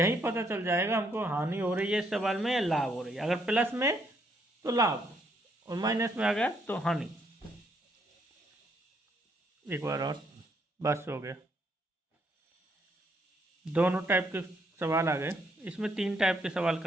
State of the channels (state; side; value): normal; both; correlation 0.72